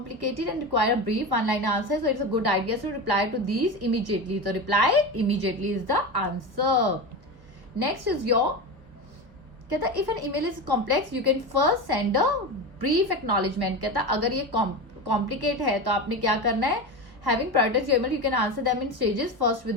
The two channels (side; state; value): left; late; 1.0 ms